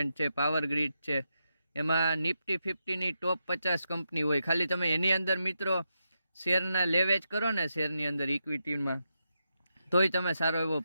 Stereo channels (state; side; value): inverted; both; correlation -0.85